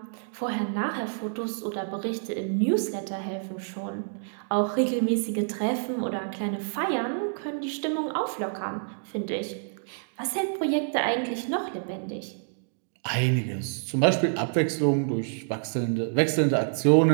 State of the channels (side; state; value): left; silent; digital silence